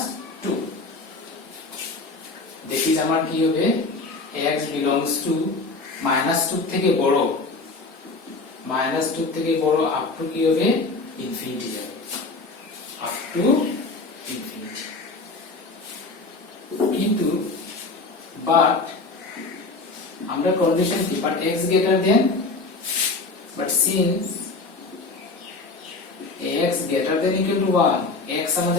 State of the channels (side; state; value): right; quieter; 3.7 dB